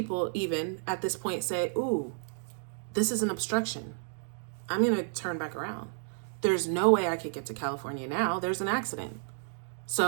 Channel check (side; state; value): left; silent; digital silence